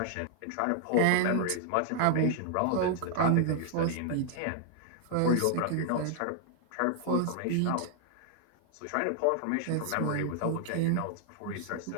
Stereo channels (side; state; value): both; different; correlation 0.00